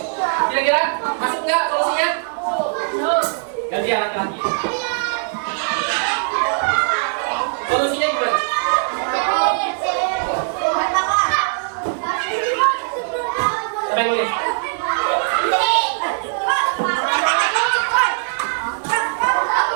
Kira-kira masuk enggak solusinya? Gantian laki-laki. Solusinya gimana? Apa yang nulis?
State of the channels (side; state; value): left; silent; digital silence